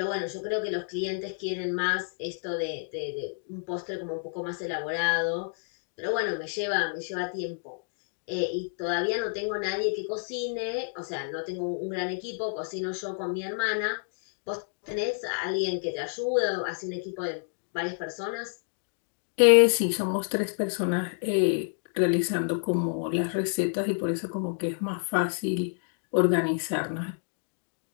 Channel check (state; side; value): silent; right; digital silence